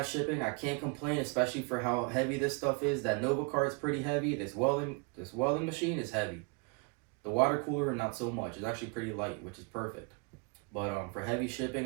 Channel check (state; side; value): quieter; left; 33.1 dB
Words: shipping. I can't complain, especially for how heavy this stuff is. That Nova cart is pretty heavy. This welding machine is heavy. The water cooler, not so much. It's actually pretty light, which is perfect. But for heavy